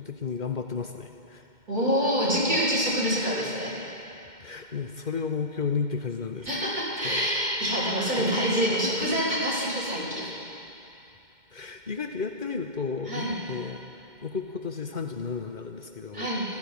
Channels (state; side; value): late; left; 2.1 ms